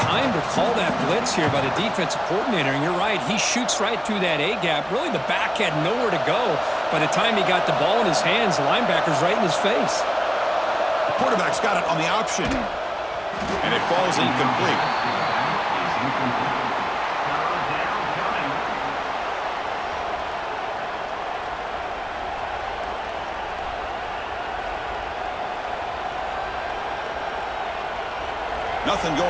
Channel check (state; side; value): identical; both; correlation 1.00